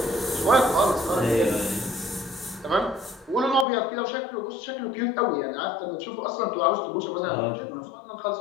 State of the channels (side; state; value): right; drops out; at 3.7 s